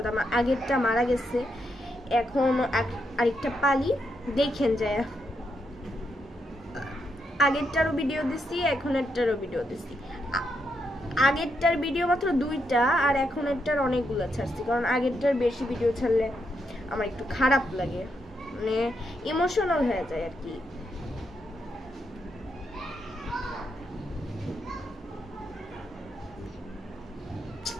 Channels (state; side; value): normal; both; correlation 0.80